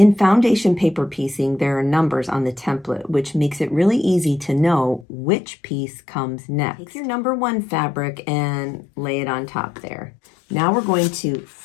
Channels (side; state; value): right; drops out; at 5.1 s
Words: foundation paper piecing, there are numbers on the template, which makes it really easy to know which piece comes next. Take your number 1 fabric and lay it on top there. Now we're going to